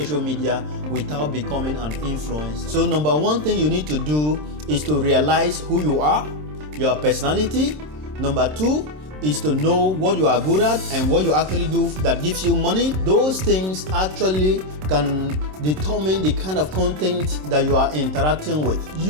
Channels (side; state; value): left; late; 26 ms